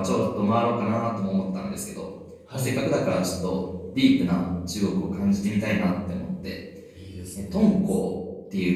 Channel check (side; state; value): both; identical; correlation 1.00